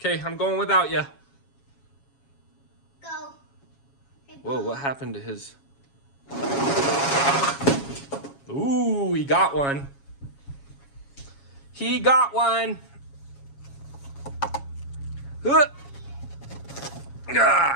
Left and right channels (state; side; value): late; right; 7.3 ms